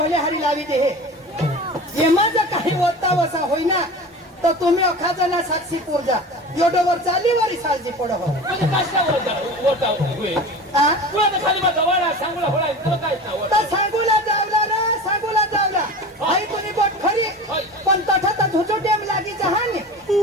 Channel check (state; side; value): normal; both; correlation 0.34